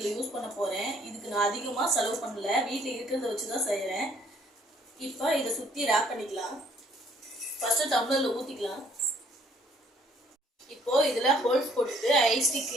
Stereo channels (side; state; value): both; normal; correlation 0.62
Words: யூஸ் பண்ண போகிறேன். இதுக்கு நான் அதிகமாக செலவு பண்ணல, வீட்டில் இருக்கிறத வச்சு தான் செய்கிறேன். இப்போ இதை சுற்றி ரேப் பண்ணிக்கலாம். ஃபர்ஸ்ட் டம்ளர்ல ஊத்திக்கலாம். இப்போ இதுல ஹோல்ஸ் போட்டுட்டு ஐஸ் ஸ்டிக்